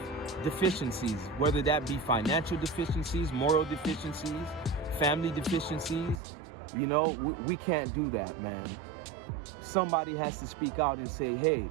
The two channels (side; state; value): left; drops out; at 6.2 s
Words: deficiencies, whether that be financial deficiencies, moral deficiencies, family deficiencies. You know, we can't do that, man. Somebody has to speak out and say, hey,